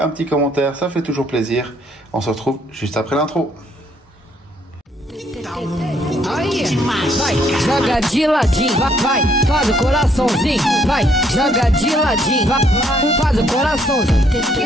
petit commentaire, ça fait toujours plaisir. On se retrouve juste après l'intro. Aí, vai, joga de ladinho, vai, faz o coraçãozinho, vai, joga de ladinho, vai, faz o coraçãozinho,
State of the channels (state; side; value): normal; both; correlation 0.68